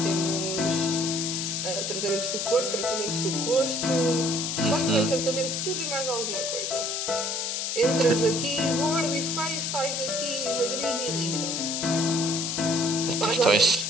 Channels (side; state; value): left; noise; hiss, 1 dB below the sound